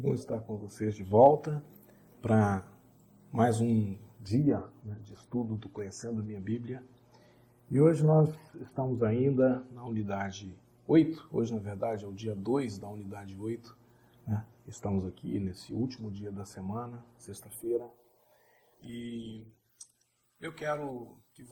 estar com vocês de volta para mais um dia, de estudo do Conhecendo Minha Bíblia. E hoje nós estamos ainda na unidade 8, hoje na verdade é o dia 2 da unidade 8, Estamos aqui nesse último dia da semana, sexta-feira, e eu quero que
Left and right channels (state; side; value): identical; both; correlation 1.00